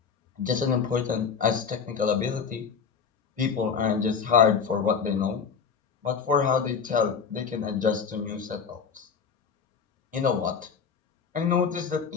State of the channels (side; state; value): right; quieter; 6.2 dB